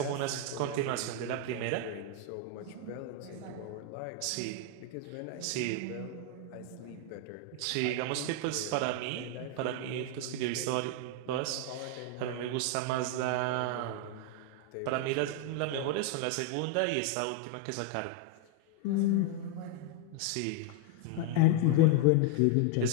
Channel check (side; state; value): both; different; correlation 0.00